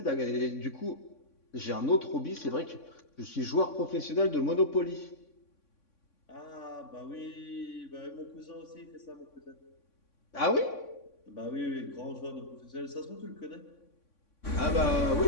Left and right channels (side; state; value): right; late; 3.6 ms